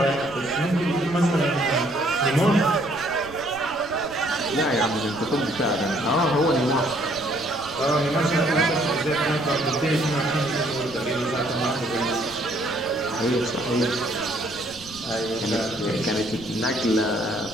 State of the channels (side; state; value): right; noise; rumble, 20 dB below the sound